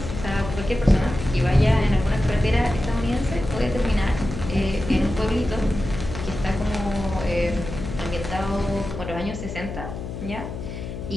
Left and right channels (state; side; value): noise; left; hum, 8 dB below the sound